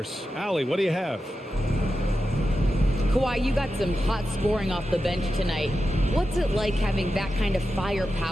Allie, what do you have? Kawhi, you got some hot scoring off the bench tonight. What's it like having that kind of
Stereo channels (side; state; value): both; normal; correlation 0.90